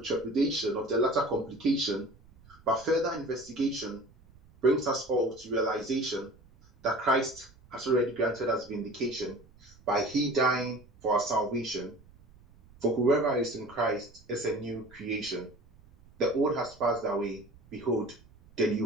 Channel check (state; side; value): noise; right; rumble, 26 dB below the sound